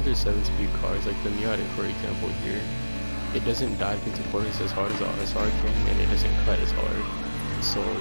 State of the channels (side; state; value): both; inverted; correlation -1.00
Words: 7-speed cars like the Miata, for example, here, it doesn't dive into corners as hard as the RSR can, and it doesn't cut as hard. So